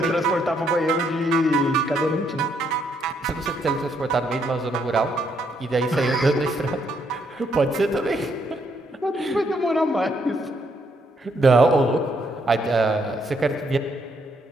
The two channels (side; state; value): both; normal; correlation 0.73